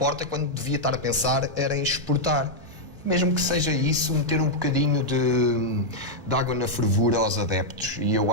quando devia estar a pensar era em exportar. Mesmo que seja isso, meter um bocadinho de água na fervura aos adeptos. E eu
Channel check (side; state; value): both; normal; correlation -0.03